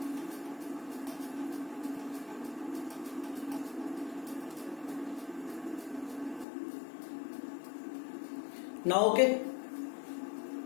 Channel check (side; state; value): right; drops out; at 6.5 s